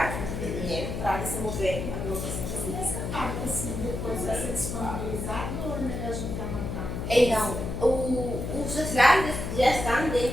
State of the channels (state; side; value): noise; left; hum, 4 dB below the sound